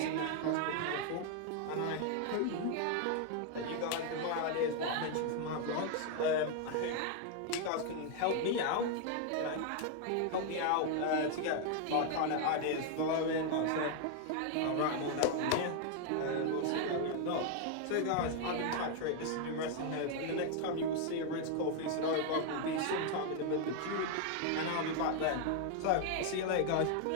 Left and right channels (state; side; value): different; both; correlation 0.00